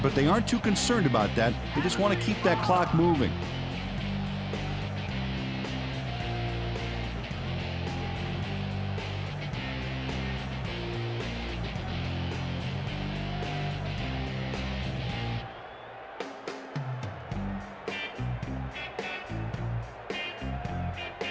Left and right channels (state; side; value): identical; both; correlation 1.00